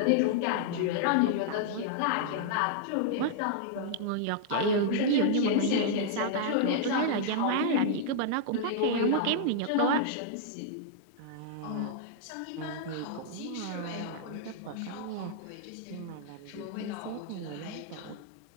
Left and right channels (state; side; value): different; both; correlation -0.01